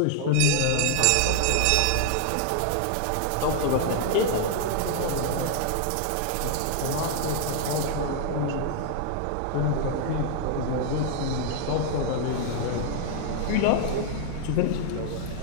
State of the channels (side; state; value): both; different; correlation 0.00